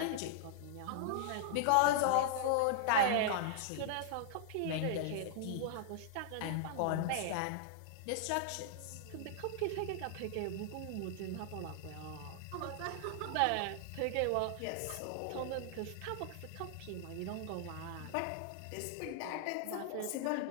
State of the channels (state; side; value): different; both; correlation -0.01